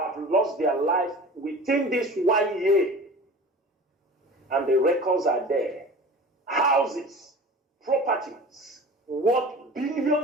lost their life within this 1 year. And the records are there. Houses, properties, worth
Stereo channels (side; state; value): both; normal; correlation 0.39